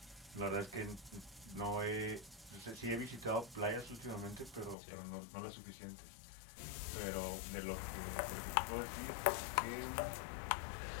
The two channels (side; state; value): right; drops out; at 4.8 s